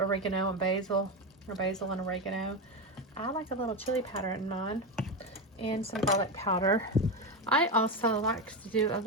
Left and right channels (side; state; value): both; normal; correlation 0.14